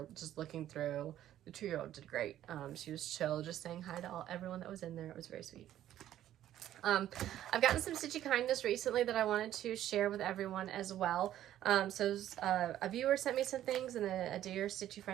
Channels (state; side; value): quieter; left; 12.2 dB